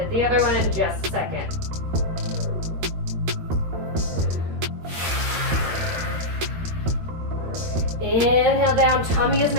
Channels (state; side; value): late; left; 13 ms